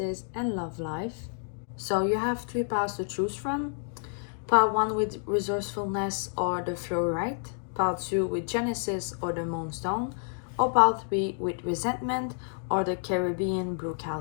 and love life. So you have three piles to choose from. Pile 1 with resourcefulness or the Fluorite, pile 2 with Genesis or the Moonstone, or pile 3 with resentment or the Caribbean blue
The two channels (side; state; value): right; silent; digital silence